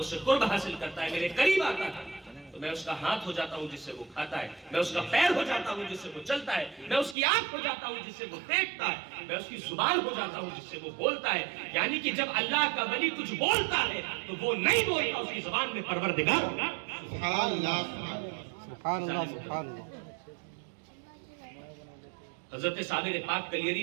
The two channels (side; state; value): left; drops out; at 7.2 s